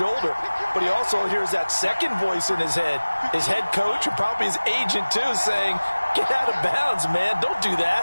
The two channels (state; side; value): inverted; both; correlation -1.00